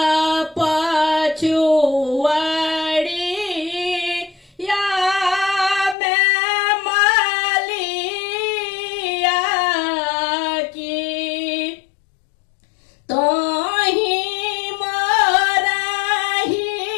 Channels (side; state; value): right; drops out; at 6.0 s